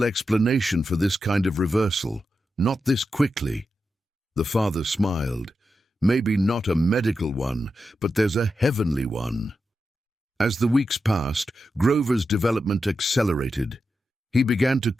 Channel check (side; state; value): both; normal; correlation 0.89